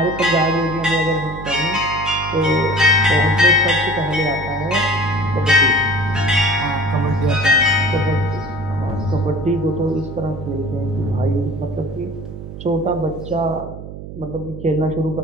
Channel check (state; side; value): noise; right; hum, 12 dB below the sound